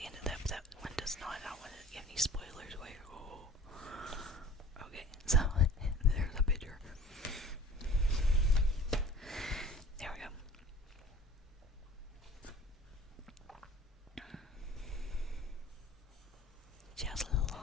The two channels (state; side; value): normal; both; correlation 0.46